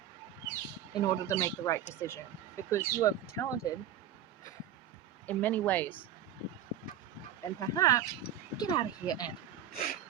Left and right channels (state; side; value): quieter; left; 10.0 dB